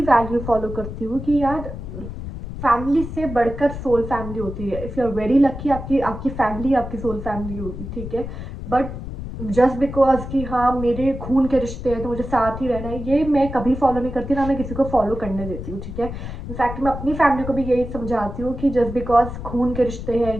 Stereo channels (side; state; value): left; noise; rumble, 8 dB below the sound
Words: वैल्यू फॉलो करती हूँ कि यार फैमिली से बढ़कर सोल फैमिली होती है। If you are very lucky, आपकी आपकी फैमिली आपकी सोल फैमिली होगी, ठीक है। बट जस्ट बिकॉज कि हाँ मेरे खून के रिश्ते हैं तो मुझे साथ ही रहना है, ये मैं कभी फॉलो नहीं करती, ना मैं किसी को फॉलो करने देती हूँ, ठीक है। इनफैक्ट मैं अपनी फैमिली को भी यही समझाती हूँ कि जस्ट बिकॉज खून के रिश्ते हैं,